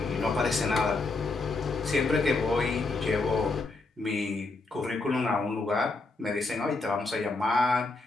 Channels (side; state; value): right; quieter; 3.5 dB